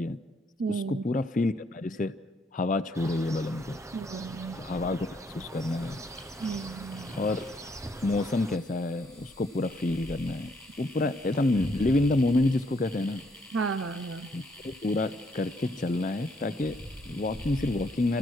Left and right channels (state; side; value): normal; both; correlation 0.71